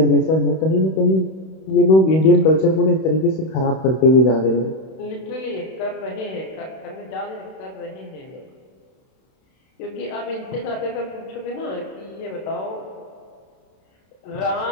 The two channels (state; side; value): late; right; 31 ms